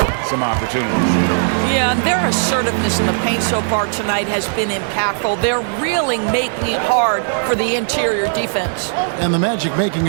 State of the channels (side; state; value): left; silent; digital silence